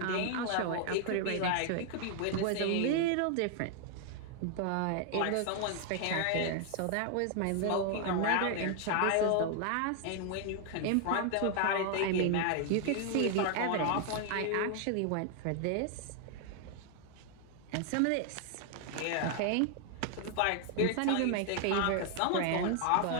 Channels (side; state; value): both; different; correlation 0.00